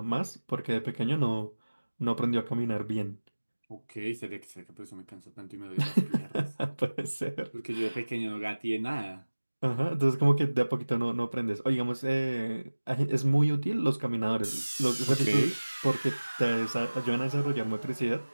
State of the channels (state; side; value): inverted; both; correlation -1.00